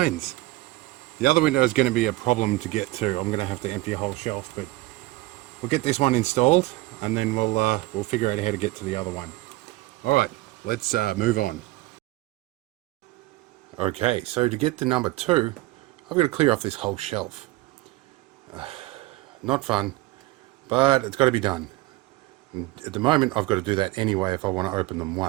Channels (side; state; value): left; quieter; 19.7 dB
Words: The other window is going to be a problem to get to. I'm going to have to empty a whole shelf, but we'll get this one installed and then we'll figure out how to get to the other one. Alright, let's move on. Okay, so to get to number 2, I've got to clear off this whole shelf. Not fun, but it's got to be done. And at the moment I've got to do that anyway if I want to open them